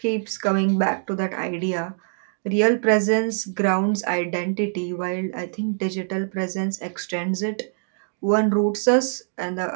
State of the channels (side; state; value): left; silent; digital silence